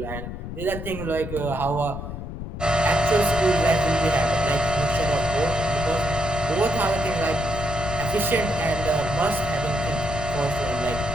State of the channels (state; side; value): noise; left; rumble, 8 dB below the sound